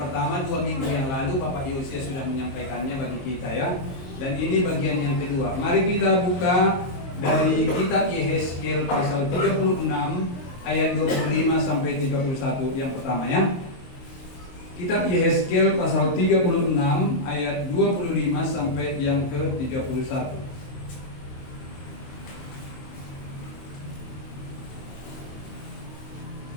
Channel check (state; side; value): late; right; 22 ms